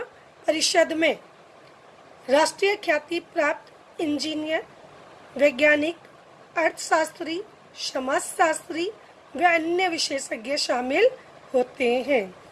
परिषद में राष्ट्रीय ख्याति प्राप्त इंजीनियर, वैज्ञानिक, अर्थशास्त्री, समाजशास्त्री व अन्य विशेषज्ञ शामिल होते हैं।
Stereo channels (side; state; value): both; identical; correlation 1.00